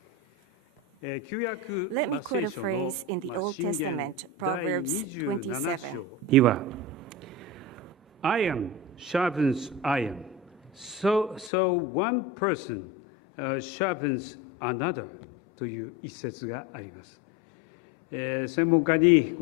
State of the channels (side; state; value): right; drops out; at 11.5 s